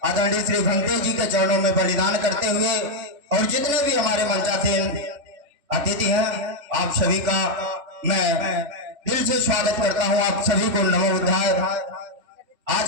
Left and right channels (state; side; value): late; left; 3.5 ms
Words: आदरणीय श्री भंते जी के चरणों में बलिदान करते हुए और जितने भी हमारे मंचासीन अतिथि हैं आप सभी का मैं दिल से स्वागत करता हूं। आप सभी को नमो बुद्धाय।